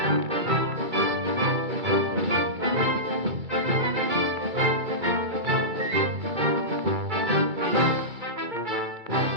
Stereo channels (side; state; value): left; late; 2.3 ms